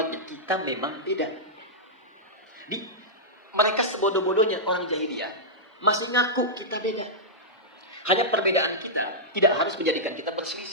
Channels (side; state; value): both; normal; correlation -0.10